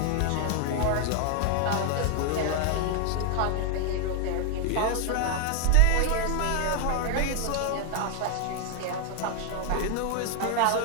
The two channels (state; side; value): different; both; correlation 0.00